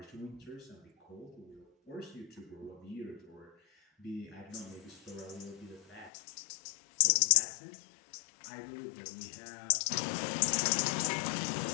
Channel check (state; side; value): drops out; right; at 6.1 s